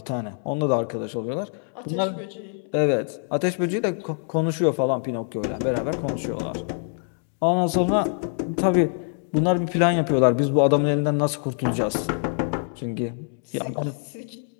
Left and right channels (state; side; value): silent; right; 62 dB below the other